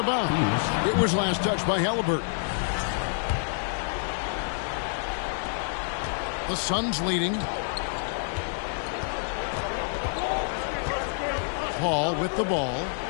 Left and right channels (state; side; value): silent; right; digital silence